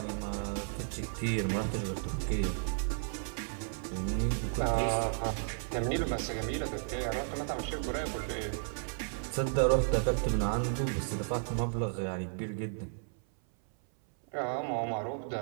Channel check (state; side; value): silent; left; 55 dB below the other